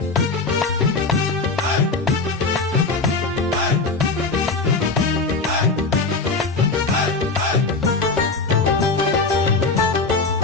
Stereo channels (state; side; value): quieter; right; 4.0 dB